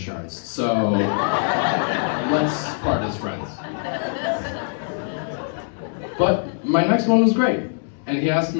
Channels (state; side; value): silent; right; digital silence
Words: So let's part as friends. But my next one was great. And he asked